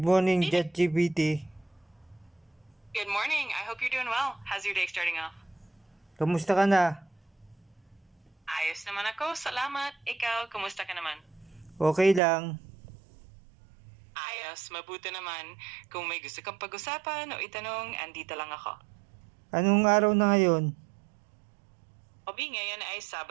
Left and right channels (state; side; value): drops out; left; at 12.2 s